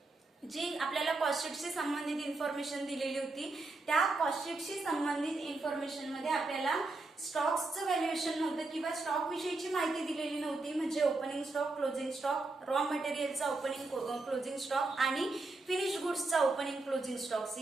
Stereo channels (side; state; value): left; quieter; 3.3 dB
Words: जी आपल्याला कॉस्ट शीटशी संबंधित इन्फॉर्मेशन दिलेली होती त्या कॉस्ट शीटशी संबंधित इन्फॉर्मेशन मध्ये आपल्याला स्टॉक्सचं व्हॅल्युएशन नव्हतं किंवा स्टॉक विषयीची माहिती दिलेली नव्हती. म्हणजे opening stock, closing stock, raw मटेरियलचा ओपनिंग क्लोजिंग स्टॉक आणि फिनिश गुड्सचा ओपनिंग क्लोजिंग स्टॉक्स